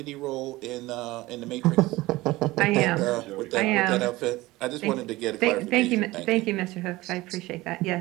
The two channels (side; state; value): left; quieter; 19.3 dB